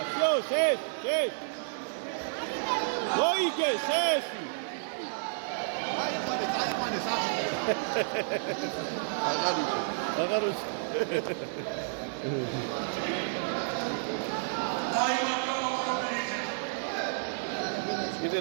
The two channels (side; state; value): left; silent; 57 dB below the other